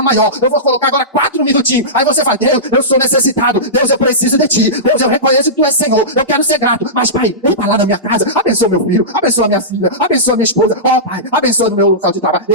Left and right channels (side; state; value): both; normal; correlation -0.17